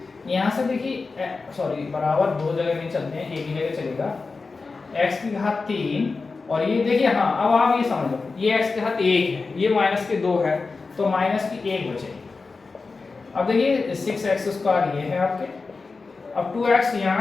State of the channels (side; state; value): right; quieter; 4.2 dB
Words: यहाँ से देखिए सॉरी बराबर 2 जगह नहीं चलते हैं, एक ही जगह चलेगा। x की घात 3 और ये देखिए, हाँ अब आप ये समझ लो, ये x की घात 1 है, ये माइनस के 2 है, तो माइनस की 1 बचेगी। अब देखिए 6x स्क्वायर ये है आपके, अब 2x यहाँ